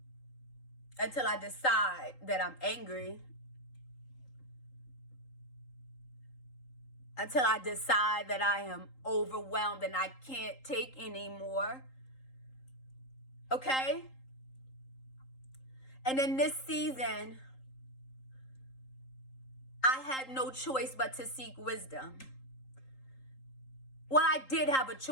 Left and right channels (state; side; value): late; right; 3.8 ms